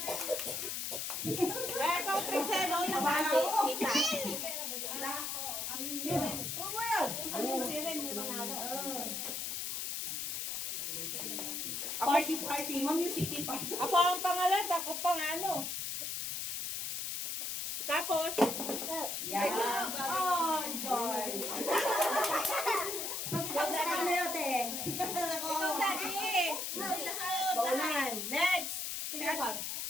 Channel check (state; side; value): noise; left; hiss, 3 dB below the sound